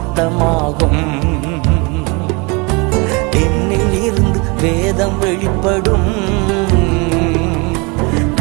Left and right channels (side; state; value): left; quieter; 28.7 dB